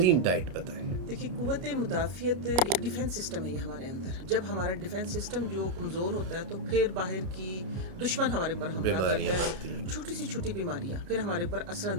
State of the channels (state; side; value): late; left; 31 ms